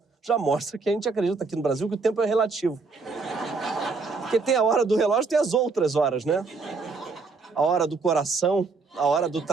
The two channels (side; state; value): left; quieter; 4.3 dB